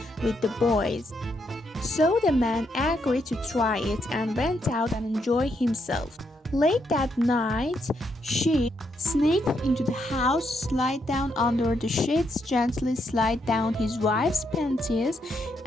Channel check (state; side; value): normal; both; correlation 0.77